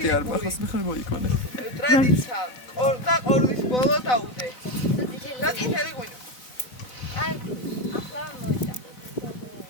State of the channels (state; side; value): late; right; 4.0 ms